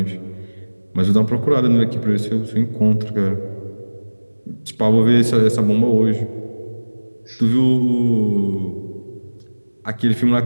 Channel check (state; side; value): inverted; both; correlation -1.00